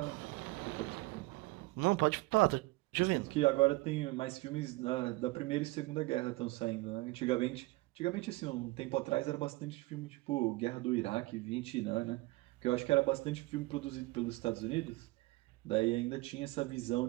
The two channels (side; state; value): left; quieter; 21.6 dB